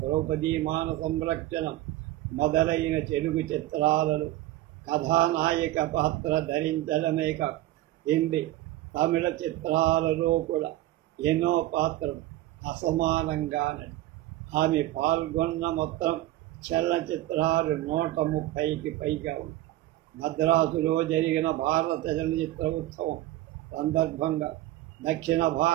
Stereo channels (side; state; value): left; quieter; 15.6 dB